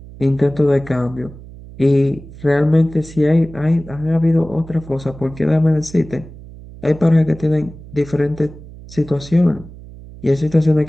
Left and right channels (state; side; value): noise; right; hum, 17 dB below the sound